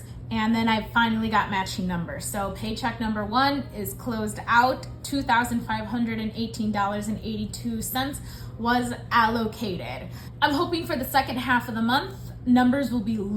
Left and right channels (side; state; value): both; identical; correlation 1.00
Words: and then I finally got matching numbers. So paycheck number 1 is closed out. $2,518.82 was allocated. I'm hoping for the second half of the month, numbers will be